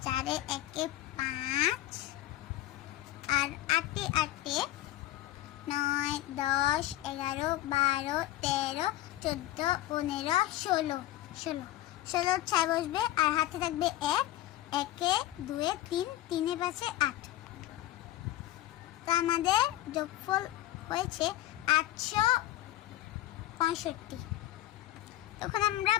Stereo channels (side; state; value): right; quieter; 14.8 dB